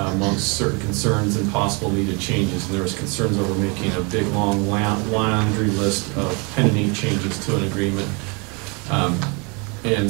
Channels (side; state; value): left; quieter; 31.6 dB